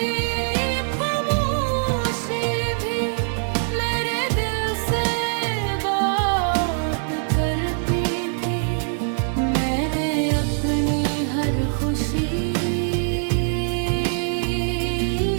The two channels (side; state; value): left; silent; digital silence